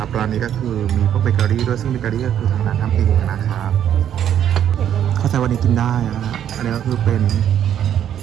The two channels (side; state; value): left; quieter; 9.9 dB